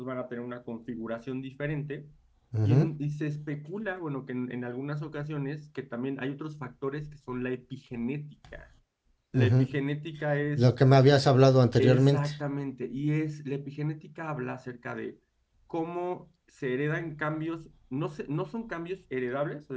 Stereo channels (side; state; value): both; identical; correlation 1.00